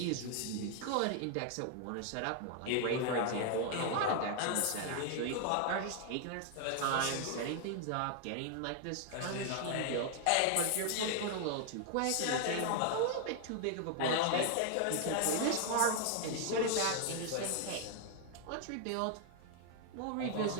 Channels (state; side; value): different; both; correlation 0.00